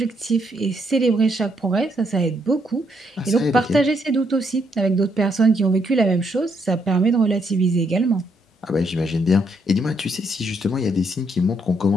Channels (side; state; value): both; normal; correlation 0.74